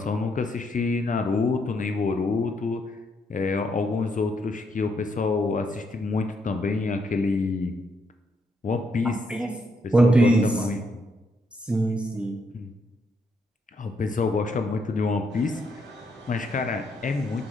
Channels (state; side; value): normal; both; correlation 0.76